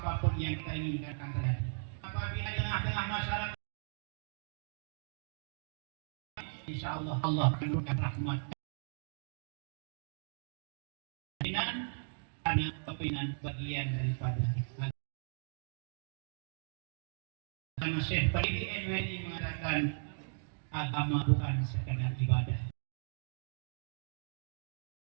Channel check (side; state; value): left; silent; digital silence